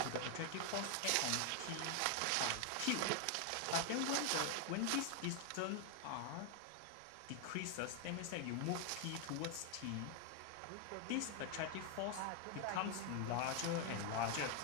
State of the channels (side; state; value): both; different; correlation 0.00